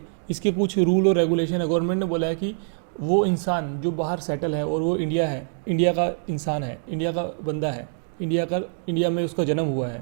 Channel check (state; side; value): silent; left; 62 dB below the other